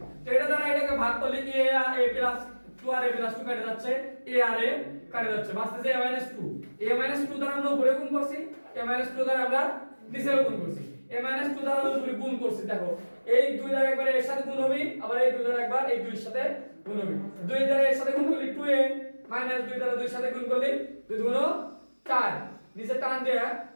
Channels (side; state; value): both; inverted; correlation -1.00